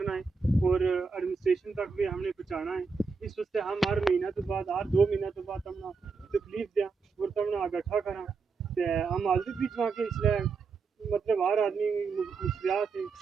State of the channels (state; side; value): quieter; left; 4.8 dB